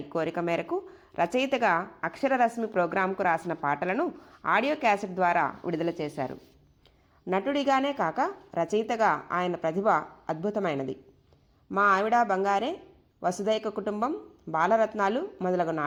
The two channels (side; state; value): both; identical; correlation 1.00